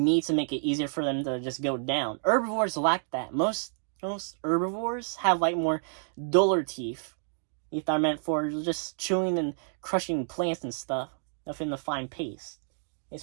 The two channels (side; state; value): left; silent; digital silence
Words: and make it easier for them to just go down. Herbivores lack that. Most herbivores have like more duller teeth. Teeth are meant for just chewing and crushing plants and stuff within the fine paste. And